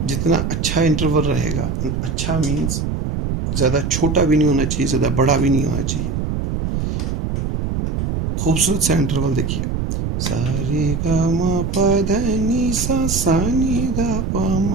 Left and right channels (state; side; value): noise; right; rumble, 1 dB below the sound